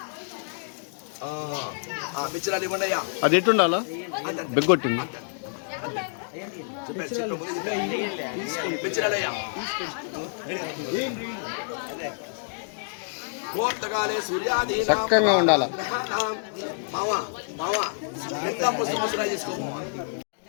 మిచ్చరాలు ఇవ్వండి అయ్యా. అది ఎట్టుండాలా బెగ్గొట్టింది. మిచ్చరాలయ్యా ముహూర్తకాలే సూర్యాదీనాం చక్కగా ఉండాలా. గ్రహాణాం మావా మావా పుష్పరాజు చేసుకో.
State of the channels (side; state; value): right; silent; digital silence